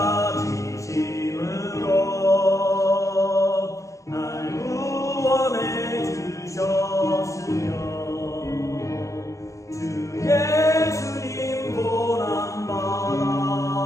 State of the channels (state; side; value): late; right; 0.15 ms